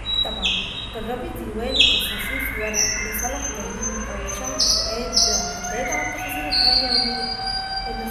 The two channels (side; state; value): both; identical; correlation 1.00